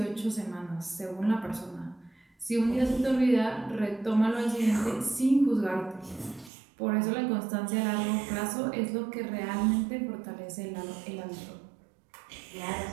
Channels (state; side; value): drops out; left; at 6.5 s